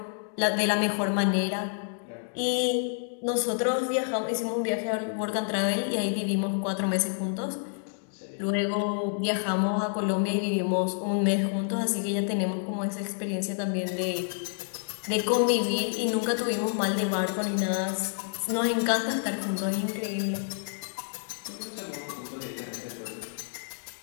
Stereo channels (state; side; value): silent; right; digital silence